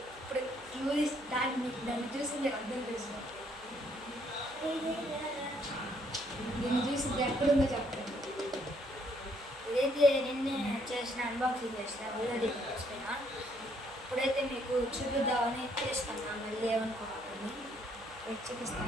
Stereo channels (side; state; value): right; noise; hum, 25 dB below the sound